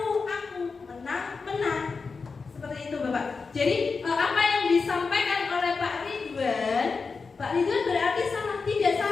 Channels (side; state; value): right; quieter; 4.7 dB